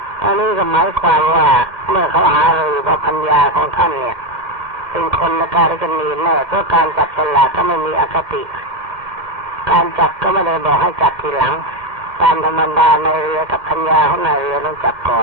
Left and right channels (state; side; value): late; left; 2.1 ms